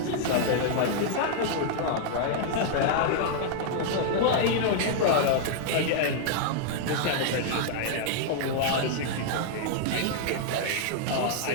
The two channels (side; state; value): both; different; correlation -0.01